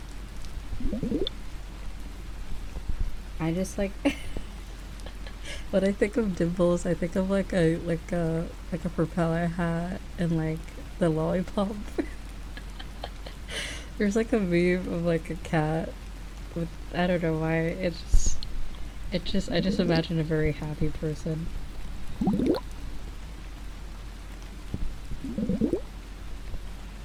I just like when I think of dimples, I think of like a propeller hat and like the lollipop. There's like a meme of like a cat with, I don't know why, I just imagine a very happy person.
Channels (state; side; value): identical; both; correlation 1.00